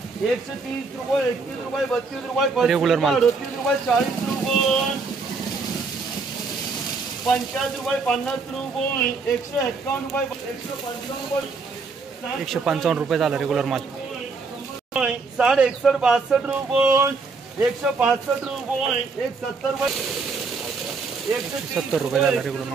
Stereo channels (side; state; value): left; quieter; 4.4 dB